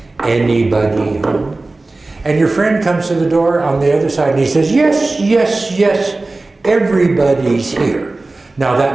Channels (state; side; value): quieter; left; 3.2 dB